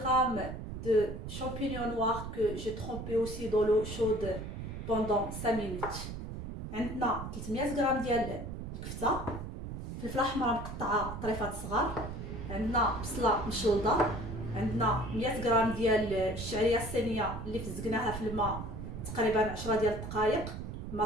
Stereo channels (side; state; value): right; noise; rumble, 8 dB below the sound